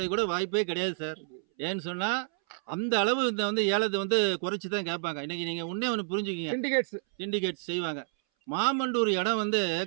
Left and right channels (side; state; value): left; silent; 58 dB below the other